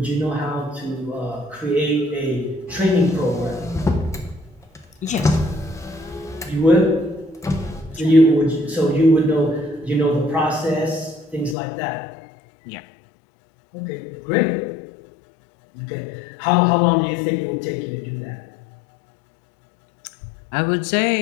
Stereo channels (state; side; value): drops out; right; at 11.6 s